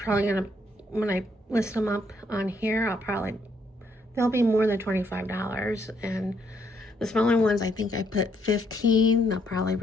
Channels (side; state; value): both; normal; correlation 0.72